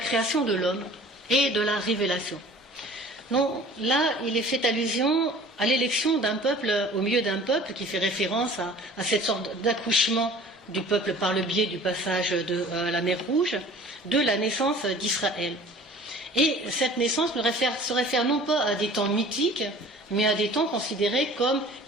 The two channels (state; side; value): normal; both; correlation 0.47